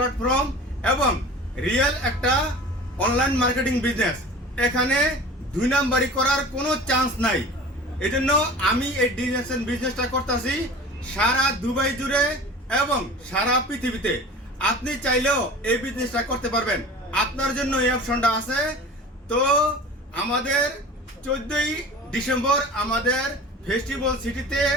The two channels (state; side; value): normal; both; correlation 0.39